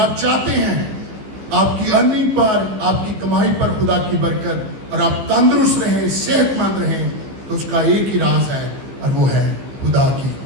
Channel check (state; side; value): late; left; 15 ms